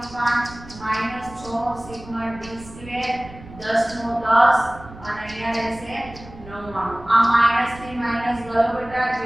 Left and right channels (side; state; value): right; noise; rumble, 18 dB below the sound